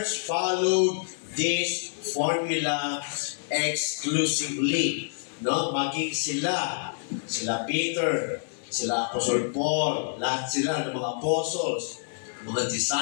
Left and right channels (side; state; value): right; silent; digital silence